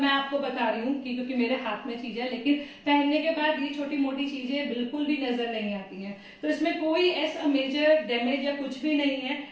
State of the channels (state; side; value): identical; both; correlation 1.00